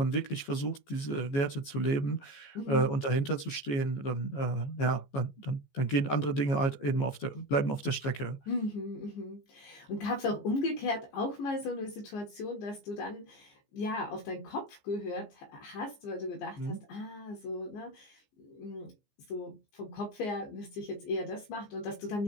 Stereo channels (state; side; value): late; right; 14 ms